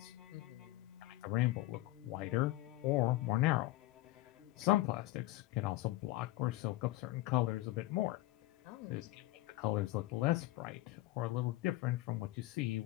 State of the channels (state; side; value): quieter; right; 17.3 dB